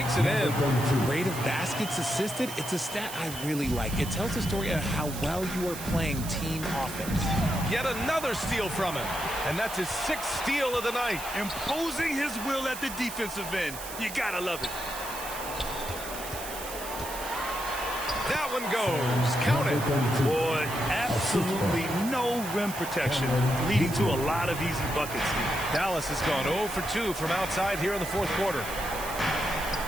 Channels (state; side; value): noise; right; hiss, 10 dB below the sound